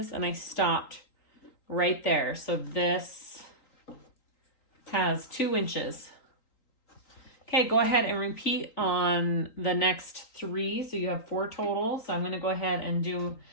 And I stopped right there. So this has 2 inches. Okay, go ahead and repeat on the next 3. So you have 4 total. So I'm going to go ahead and do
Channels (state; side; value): late; right; 3.9 ms